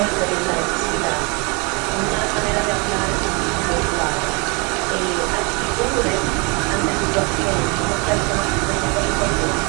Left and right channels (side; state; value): left; quieter; 30.5 dB